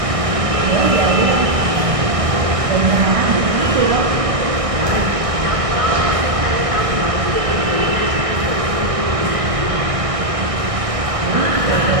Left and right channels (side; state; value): left; late; 1.6 ms